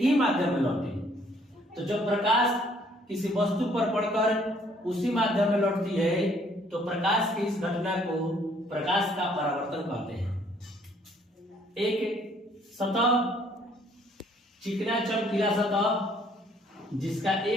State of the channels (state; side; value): normal; both; correlation 0.63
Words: ही माध्यम में लौटे। तो जब प्रकाश किसी वस्तु पर पड़कर उसी माध्यम में लौटती है तो प्रकाश की इस घटना को प्रकाश का परावर्तन कहते हैं। एक सतह, चिकना चमकीला सतह जिसका